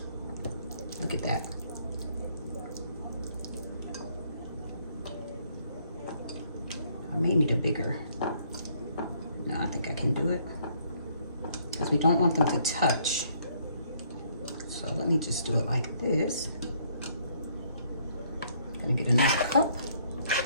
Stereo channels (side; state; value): both; inverted; correlation -0.66